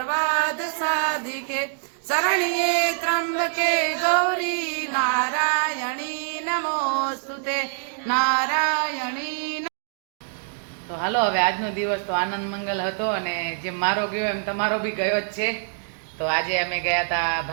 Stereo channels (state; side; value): silent; left; digital silence